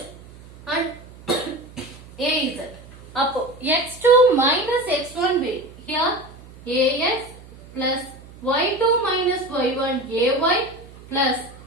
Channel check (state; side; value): noise; right; hum, 20 dB below the sound